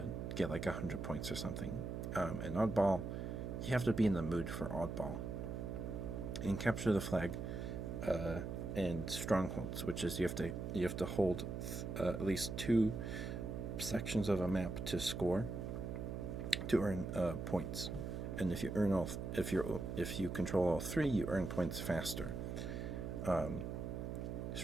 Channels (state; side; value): noise; right; hum, 4 dB below the sound